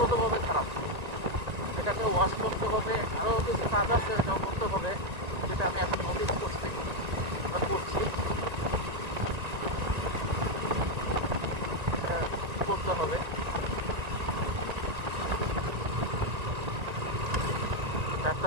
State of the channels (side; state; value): left; late; 1.9 ms